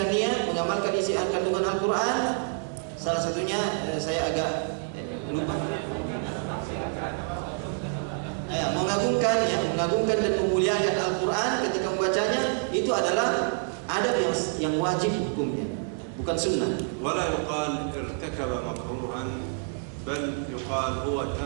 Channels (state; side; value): silent; left; 60 dB below the other